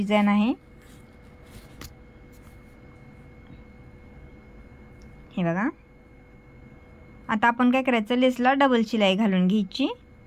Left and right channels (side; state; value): both; identical; correlation 1.00